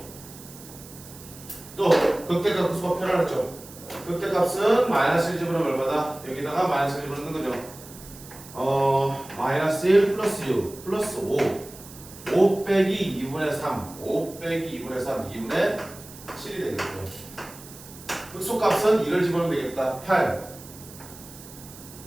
또 극대값 극소가 표현하죠. 극대값은 마이너스 1 집어넣으면 얼마다? 여기다가 마이너스 1 집어넣는 거죠. 마이너스 1 플러스 6 플러스 5 빼기 2분의 3 5 빼기 2분의 3 2분의 7이 되겠죠. 극소값은 2를 집어넣으면 되겠다. 8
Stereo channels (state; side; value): noise; right; hiss, 18 dB below the sound